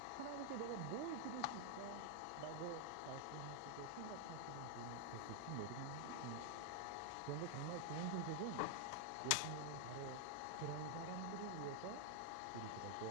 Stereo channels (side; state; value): both; different; correlation 0.00